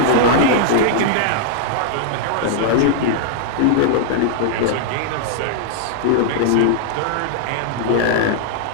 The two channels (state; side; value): different; both; correlation -0.01